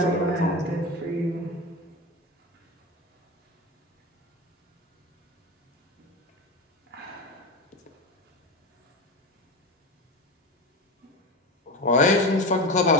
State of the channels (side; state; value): both; normal; correlation 0.22